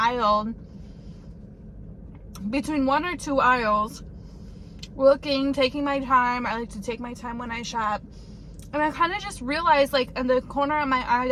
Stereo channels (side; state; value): both; identical; correlation 1.00